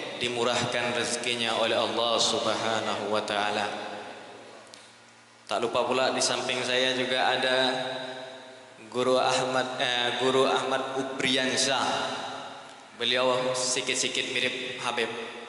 dimurahkan rezekinya oleh Allah Subhanahu wa taala. Tak lupa pula di samping saya juga ada Guru Ahmad Ubriansyah. Beliau sikit-sikit mirip Habib.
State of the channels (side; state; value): both; identical; correlation 1.00